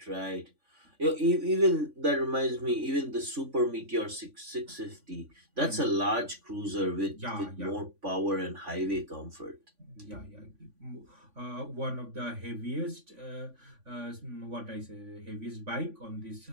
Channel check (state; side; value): late; left; 3.5 ms